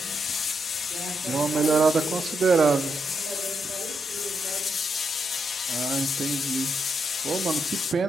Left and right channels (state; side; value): normal; both; correlation 0.80